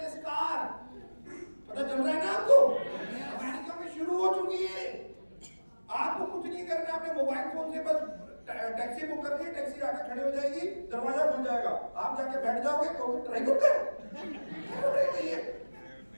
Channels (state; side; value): inverted; both; correlation -1.00